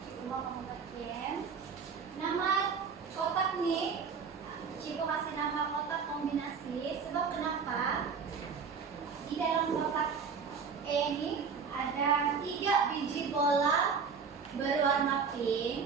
Cikgu mau membuat game. Nama kotak nih, Cikgu kasih nama kotak kombinasi. Sebab kenapa? Di dalam kotak E ini ada 3 biji bola berwarna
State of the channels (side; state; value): left; quieter; 5.8 dB